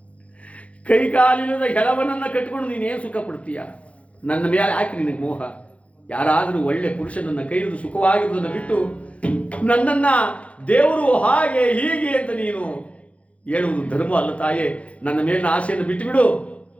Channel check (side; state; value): right; late; 0.064 ms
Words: ಕೈಕಾಲಿಲ್ಲದ ಹೆಳವನನ್ನ ಕಟ್ಕೊಂಡು ನೀನೇನು ಸುಖ ಪಡ್ತೀಯ? ನನ್ನ ಮೇಲೆ ಯಾಕೆ ನಿನಗೆ ಮೋಹ? ಯಾರಾದರೂ ಒಳ್ಳೆ ಪುರುಷನನ್ನ ಕೈ ಹಿಡಿದು ಸುಖವಾಗಿರುವುದನ್ನು ಬಿಟ್ಟು ನನ್ನನ್ನ ದೇವರು ಹಾಗೆ ಹೀಗೆ ಅಂತ ನೀನು ಹೇಳುವುದು ಧರ್ಮ ಅಲ್ಲ ತಾಯೇ. ನನ್ನ ಮೇಲಿನ ಆಸೆಯನ್ನು ಬಿಟ್ಟು ಬಿಡು,